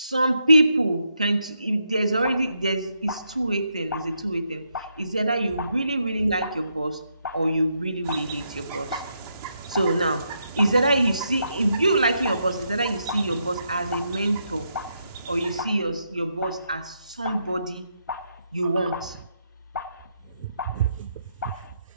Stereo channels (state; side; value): inverted; both; correlation -0.79